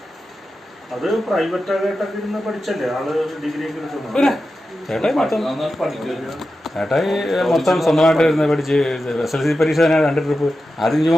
അത് പ്രൈവറ്റ് ആയിട്ടൊക്കെ ഇരുന്ന് പഠിച്ചല്ലേ ആള് ഡിഗ്രി ഒക്കെ എടുക്കുന്നത്. ചേട്ടായി മൊത്തം സ്വന്തമായിട്ട് ഇരുന്ന് പഠിച്ച് SLC പരീക്ഷ തന്നെ 2 ട്രിപ്പ് ആദ്യം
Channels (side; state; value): both; normal; correlation 0.91